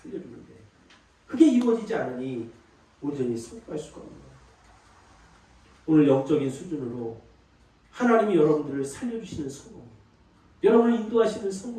그게 이루어지지 않으니 온전히 성공할 수가 없는 거예요. 오늘 영적인 수준으로 하나님이 여러분들을 살려주시는 성공, 여러분을 인도하시는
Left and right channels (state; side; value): identical; both; correlation 1.00